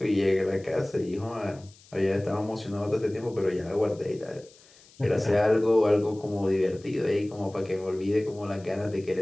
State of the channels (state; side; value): noise; left; hiss, 26 dB below the sound